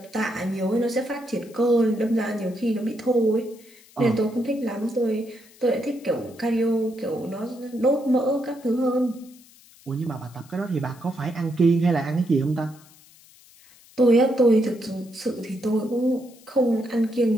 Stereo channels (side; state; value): left; noise; hiss, 25 dB below the sound